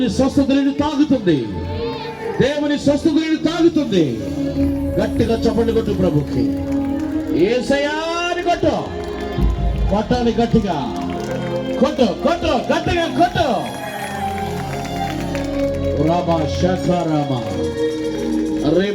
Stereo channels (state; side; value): identical; both; correlation 1.00